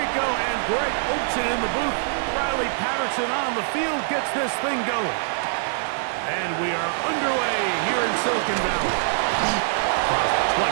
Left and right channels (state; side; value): silent; left; 63 dB below the other